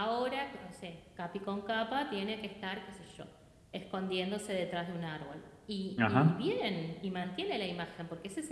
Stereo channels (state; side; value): identical; both; correlation 1.00